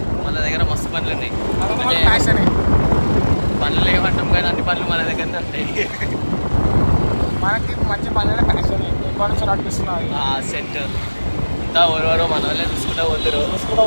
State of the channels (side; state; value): both; inverted; correlation -1.00